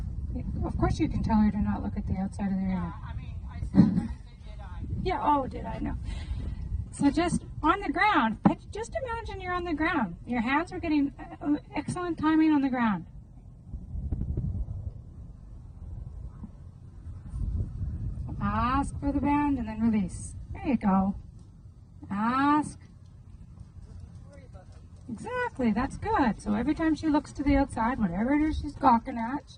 No. Of course you can tell her to not look at the outside of the arena. Yeah, I mean, I said that, did I? Yeah, oh, did I know. So just on the ground, just imagine you're on the ground. Your hands are getting excellent timing on the ground. Ask for the bend and then release. There you go. Ask. Exactly, that's good. So every time she looks to the outside, whatever it is she's gawking at,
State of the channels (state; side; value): identical; both; correlation 1.00